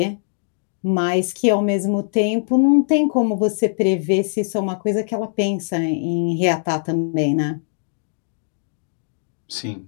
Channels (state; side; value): silent; right; digital silence